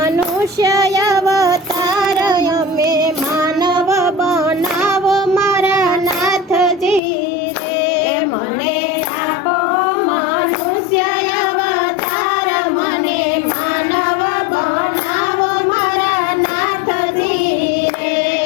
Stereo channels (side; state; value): right; drops out; at 7.0 s